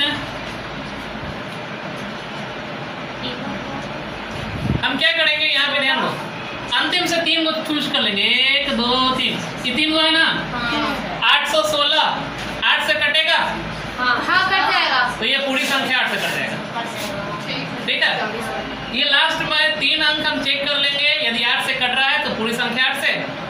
हैं, हम क्या करेंगे, यहाँ पे ध्यान दो, अंतिम से 3 को चूज कर लेंगे। 1 2 3, ये 3 को है ना? 816, 8 से कटेगा हाँ, कट जाएगा। तो ये पूरी संख्या 8 से कट जाएगा। ठीक है? ये लास्ट में 3 अंक हम चेक कर लेंगे, यदि 8 से कट रहा है तो पूरी संख्या 8 से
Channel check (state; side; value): identical; both; correlation 1.00